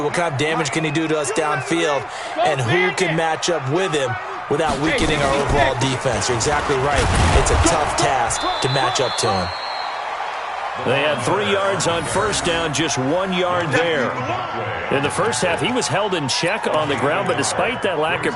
What kind of damage can he do to us downfield? And who can match up with him without weakening our overall defense? You're exactly right. It's a tough task to match up to him. They had 3 yards on first down, just 1 yard there. In the first half, he was held in check on the ground, but despite that lack of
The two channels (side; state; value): both; identical; correlation 1.00